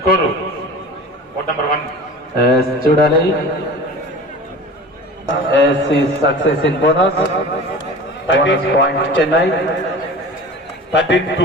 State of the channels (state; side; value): normal; both; correlation 0.37